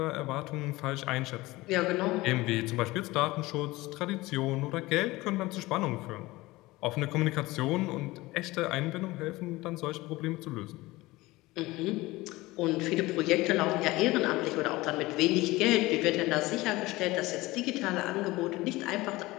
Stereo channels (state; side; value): quieter; right; 20.0 dB